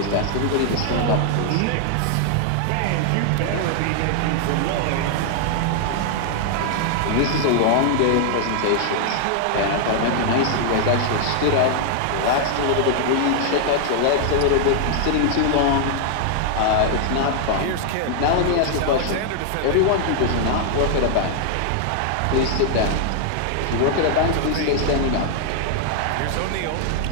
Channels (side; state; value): both; different; correlation 0.00